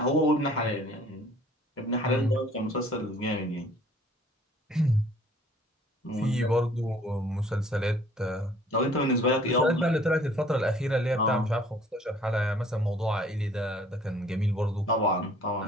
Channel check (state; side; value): normal; both; correlation 0.55